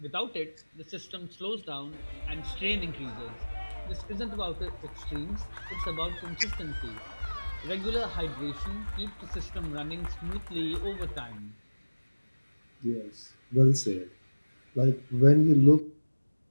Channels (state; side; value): inverted; both; correlation -1.00